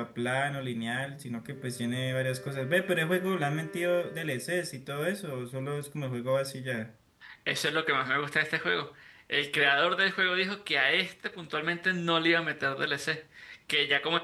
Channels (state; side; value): identical; both; correlation 1.00